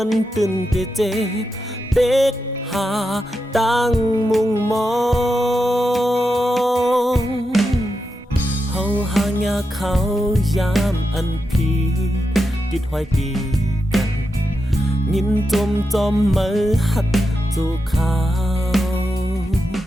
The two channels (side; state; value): both; normal; correlation 0.88